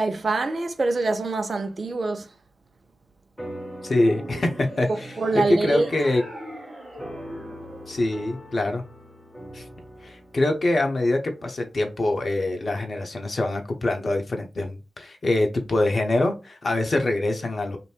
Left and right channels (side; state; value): both; normal; correlation 0.93